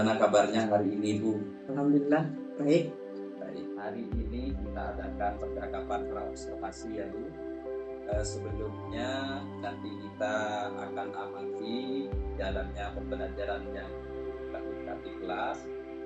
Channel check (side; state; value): both; identical; correlation 1.00